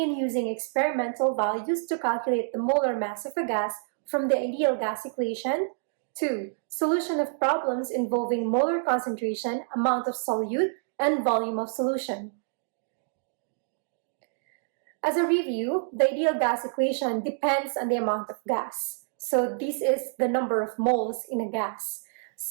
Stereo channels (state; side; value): silent; left; digital silence